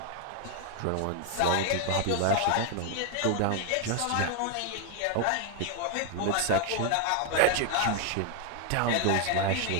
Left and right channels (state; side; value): different; both; correlation 0.01